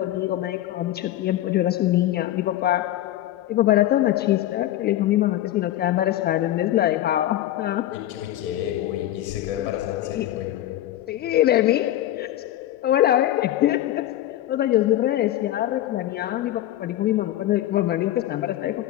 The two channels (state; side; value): quieter; right; 13.6 dB